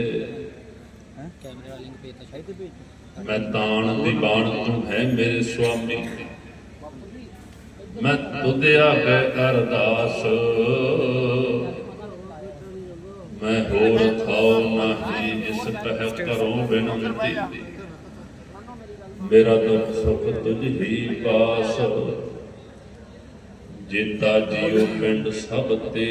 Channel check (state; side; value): identical; both; correlation 1.00